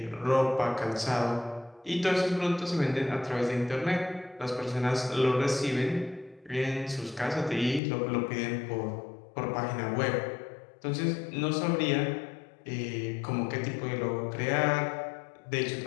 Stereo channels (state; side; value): drops out; right; at 7.8 s